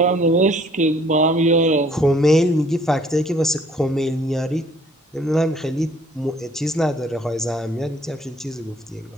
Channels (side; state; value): both; normal; correlation 0.59